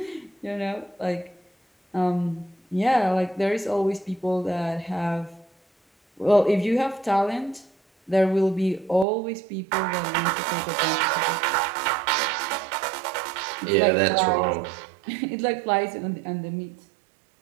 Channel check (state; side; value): drops out; left; at 9.1 s